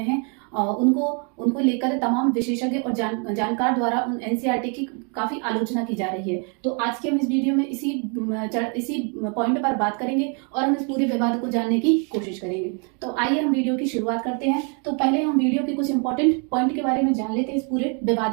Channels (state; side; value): quieter; left; 38.1 dB